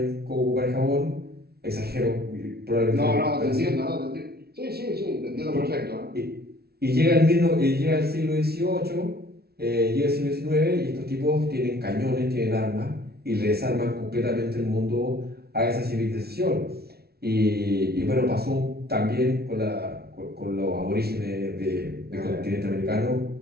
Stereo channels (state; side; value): late; left; 0.45 ms